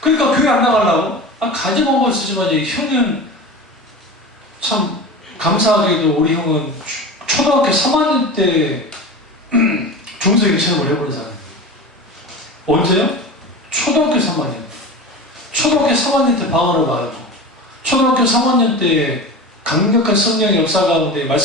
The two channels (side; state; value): both; normal; correlation 0.31